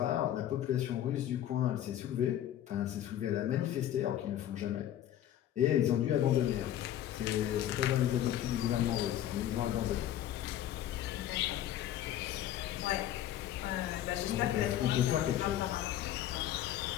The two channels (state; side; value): quieter; right; 11.9 dB